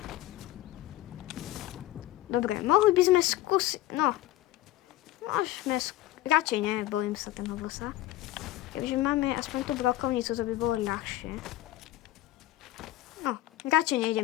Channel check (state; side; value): quieter; right; 15.2 dB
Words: Dobre, mohli by sme skúsiť. No. Môžeme radšej ne, bojím sa ten bossa. Keďže máme aspoň tú brokovnicu, to by bolo ľahšie. No, radšej